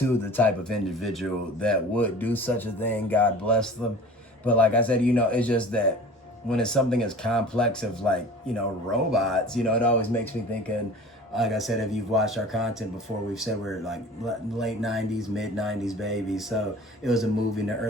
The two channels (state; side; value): normal; both; correlation 0.41